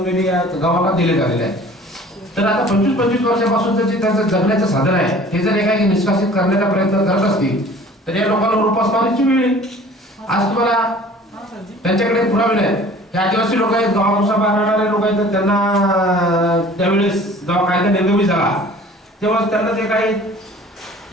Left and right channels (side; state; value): both; normal; correlation 0.48